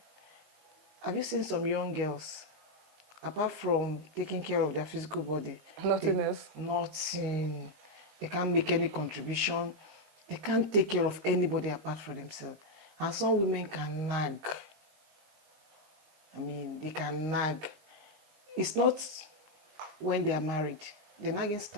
Have you seen some young girls? Apart from taking care of their physical body. Nothing else? Nothing. They can't make any contribution. They can't take care of anybody apart from themselves. And some women can nag. They can nag. It's not when they are married. The nagging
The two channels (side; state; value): left; late; 19 ms